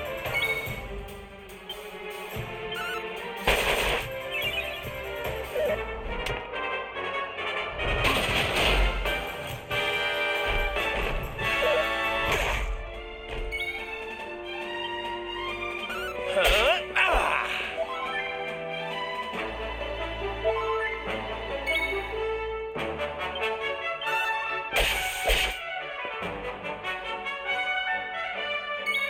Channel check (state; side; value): identical; both; correlation 1.00